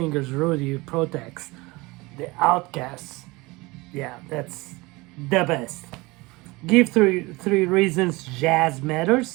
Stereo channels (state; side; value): quieter; left; 23.1 dB